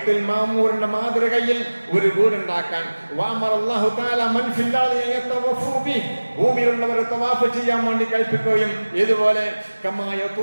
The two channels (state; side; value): inverted; both; correlation -1.00